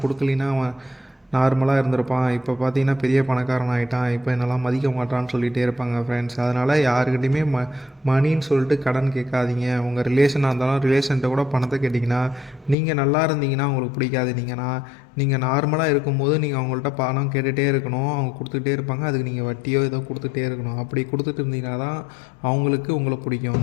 கொடுக்கலின்னா அவன் நார்மலாக இருந்திருப்பான், இப்போ பார்த்தீங்கன்னா பெரிய பணக்காரன் ஆகிட்டான், இப்போ என்னெல்லாம் மதிக்க மாட்டான்னு சொல்லிகிட்டே இருப்பாங்க ஃப்ரெண்ட்ஸ். அதனால் யாருக்கிட்டையுமே மணின்னு சொல்லிட்டு கடன் கேட்காதீங்க. உங்கள் ரிலேஷனாக இருந்தாலும் ரிலேஷன்கிட்ட கூட பணத்தை கேட்டிங்கன்னா, நீங்கள் நல்லா இருந்தீங்கன்னா அவங்களுக்கு பிடிக்காது. நீங்கள் நார்மலாக இருக்கும்போது நீங்கள் அவங்கள்ட்ட பணம் கேட்டுகிட்டே இருக்கணும், அவங்க கொடுத்துக்கிட்டே இருப்பாங்க. அதுக்கு நீங்கள் வட்டியோ ஏதோ கொடுத்துட்டே இருக்கணும். அப்படி கொடுத்துட்டு இருந்தீங்கன்னா தான் அவங்களுக்கு உங்களை பிடிக்கும்.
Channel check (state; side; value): drops out; right; at 12.8 s